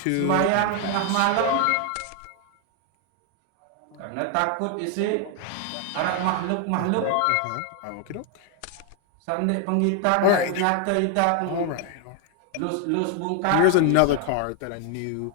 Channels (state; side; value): different; both; correlation 0.00